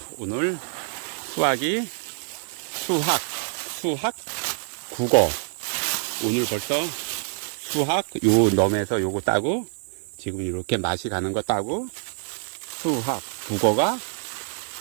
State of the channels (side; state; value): left; silent; digital silence